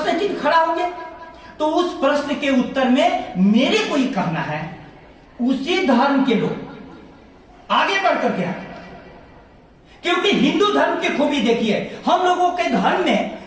चिन्ह खड़ा होंगे। तो उस प्रश्न के उत्तर में मेरे को ये कहना है, उसी धर्म के लोग आगे बढ़ करके आए, क्योंकि हिंदू धर्म की खूबी देखिए, हम लोगों के धर्म में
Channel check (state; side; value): identical; both; correlation 1.00